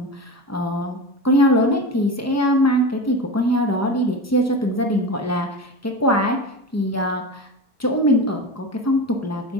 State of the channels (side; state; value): both; normal; correlation 0.26